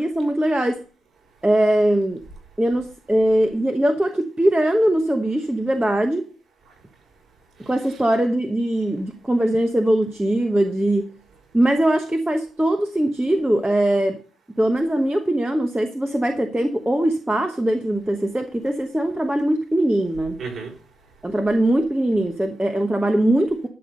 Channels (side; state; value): both; normal; correlation 0.95